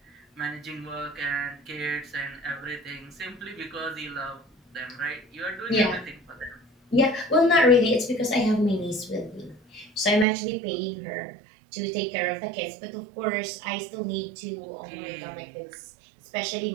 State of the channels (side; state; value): left; drops out; at 10.2 s